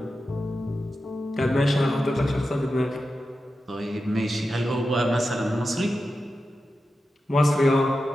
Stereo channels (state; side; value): normal; both; correlation 0.91